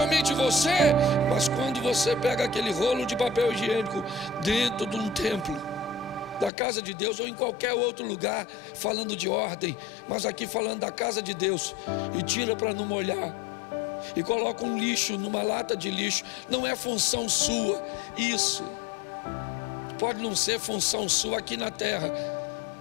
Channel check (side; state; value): right; drops out; at 6.5 s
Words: você. Mas quando você pega aquele rolo de papel higiênico dentro de um templo, da casa de Deus, ou em qualquer outro lugar, falando de ordem, mas aqui falando da casa de Deus, e tira para não molhar, e coloca um lixo numa lata de lixo, não é função sua. Isso pode não ser função sua aqui na terra,